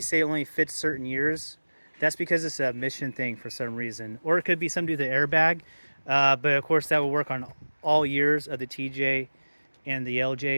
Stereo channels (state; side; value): inverted; both; correlation -1.00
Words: say it only fits certain years. That's because it's a mission thing for some reason. Or it could be something to do with the airbag. But of course that will work on all years of the TJ and the